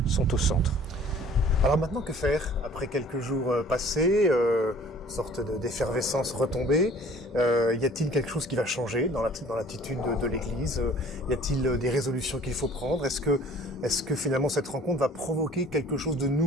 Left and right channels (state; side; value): normal; both; correlation 0.51